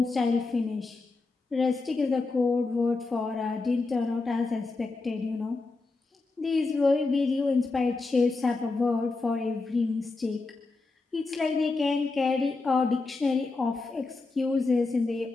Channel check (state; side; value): quieter; right; 3.6 dB